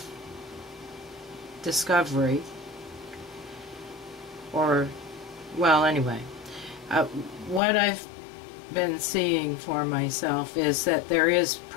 or, well, anyway, what I've been seeing for myself is that there is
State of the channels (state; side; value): drops out; right; at 7.6 s